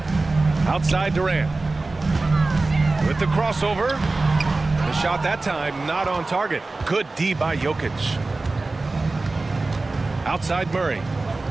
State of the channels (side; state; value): left; quieter; 3.4 dB